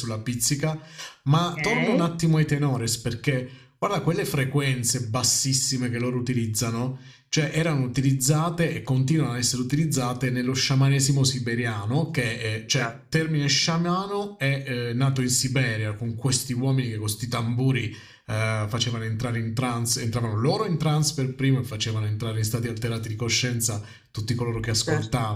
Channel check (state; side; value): identical; both; correlation 1.00